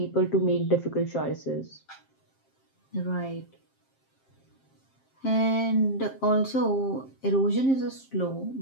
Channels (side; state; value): right; late; 7.5 ms